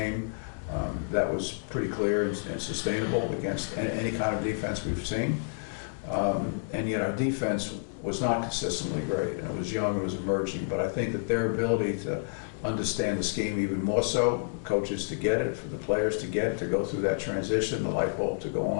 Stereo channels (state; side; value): silent; right; digital silence